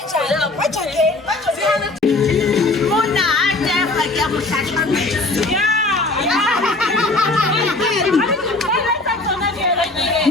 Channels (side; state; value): right; quieter; 3.1 dB